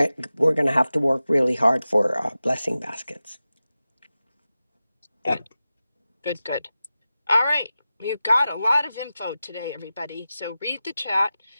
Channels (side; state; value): both; inverted; correlation -0.94